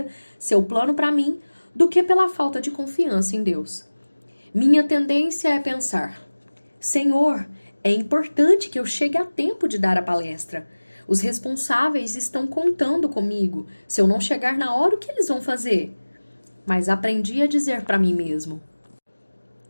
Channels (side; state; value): both; inverted; correlation -1.00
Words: seu plano para mim do que pela falta de confiança em Deus. Minha tendência é pensar: Senhor, é importante que eu chegue a tempo de dar a palestra. Os responsáveis estão contando comigo. Se eu não chegar na hora, o que eles vão fazer? Mas aprendi a dizer para mim mesmo: